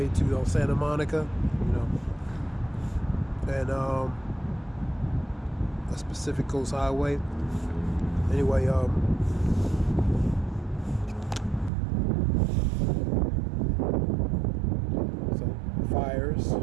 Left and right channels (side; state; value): left; drops out; at 11.7 s